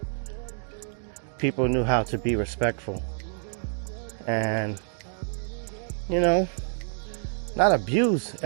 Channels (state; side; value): silent; left; 58 dB below the other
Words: people knew how to be respectful and, you know, not abuse